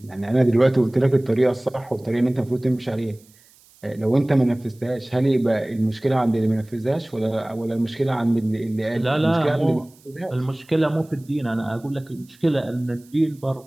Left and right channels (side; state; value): right; noise; hiss, 29 dB below the sound